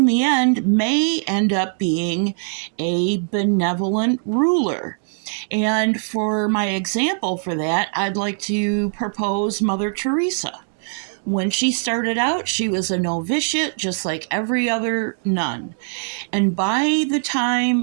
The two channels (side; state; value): left; silent; digital silence